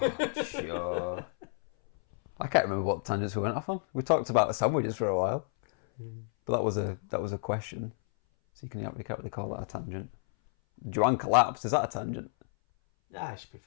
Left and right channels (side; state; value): right; silent; 57 dB below the other